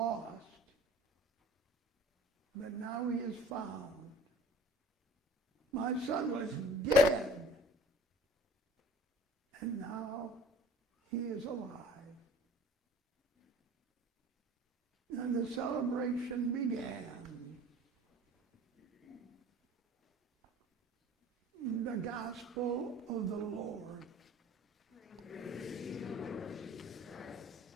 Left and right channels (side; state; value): both; normal; correlation 0.47